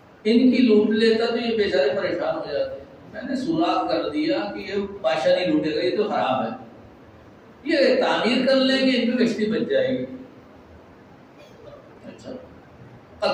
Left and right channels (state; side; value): identical; both; correlation 1.00